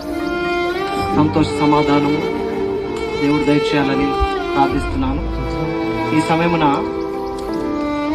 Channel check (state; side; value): identical; both; correlation 1.00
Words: సంతోష సమాధానము దేవుడు దయచేయాలని ప్రార్థిస్తున్నాను. ఈ సమయమున